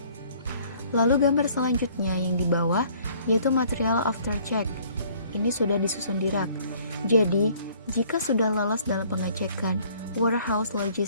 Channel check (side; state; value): both; inverted; correlation -0.58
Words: Lalu gambar selanjutnya yang di bawah yaitu material after check. Ini sudah disusun di rak. Jadi, jika sudah lolos dalam pengecekan warehouse,